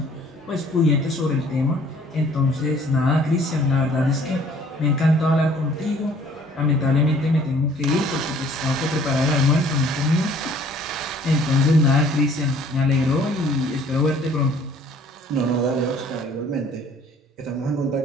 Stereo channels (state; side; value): normal; both; correlation 0.56